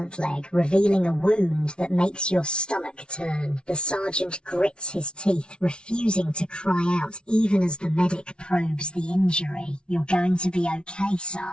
leg, revealing a wound that makes your stomach turn. The sergeant grits his teeth, refusing to cry out even as the medic probes the injury. You're going to be okay,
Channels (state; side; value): late; right; 0.057 ms